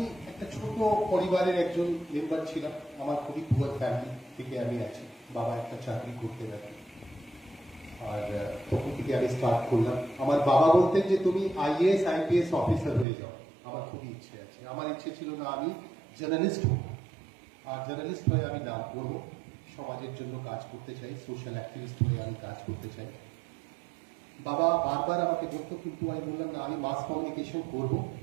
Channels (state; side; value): drops out; left; at 13.1 s